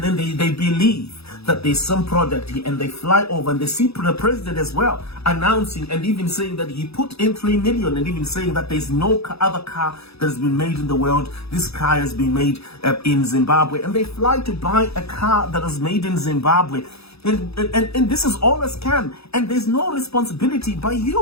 then they believe that there's some product here, and they fly over and they see the president as well announcing and even saying that he put in 3 million, and even saying that there's no other car that has been made in the world. This car has been made in Zimbabwe, and they fly to buy a car that was made in Zimbabwe. And this is all a scam, and there's no responsibility by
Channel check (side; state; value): right; late; 0.78 ms